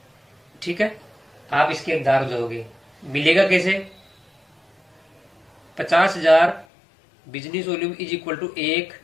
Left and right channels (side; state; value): right; drops out; at 6.7 s